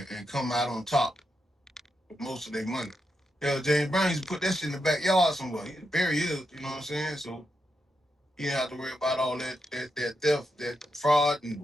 come out on top with most of their money. Hell, James Brown used to put that shit in the backyard somewhere. He bury his, you know what I'm saying? So you didn't have to worry about all that theft, that fraud and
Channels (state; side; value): normal; both; correlation 0.85